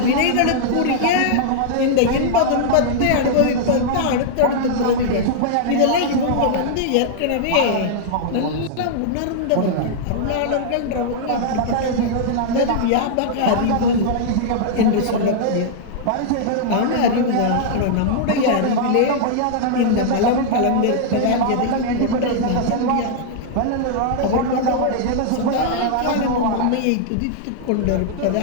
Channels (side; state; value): both; different; correlation -0.01